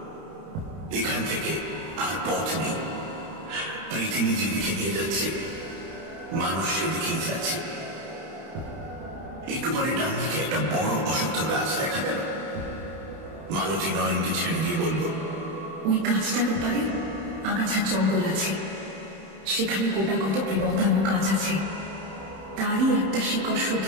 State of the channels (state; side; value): late; left; 31 ms